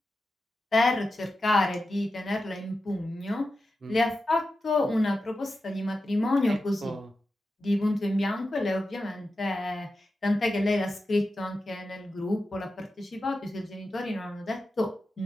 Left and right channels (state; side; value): normal; both; correlation 0.91